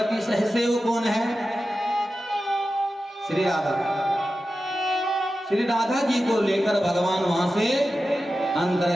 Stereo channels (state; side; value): normal; both; correlation 0.93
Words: सहसेव कौन है? श्री राधा। श्री राधा जी को लेकर भगवान वहां से अंतर